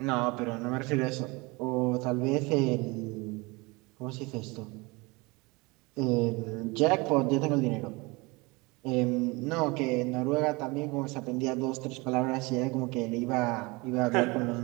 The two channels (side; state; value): left; quieter; 25.4 dB